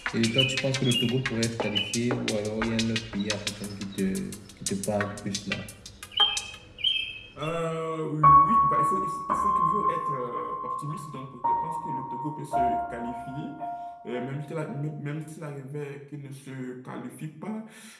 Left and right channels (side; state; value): both; identical; correlation 1.00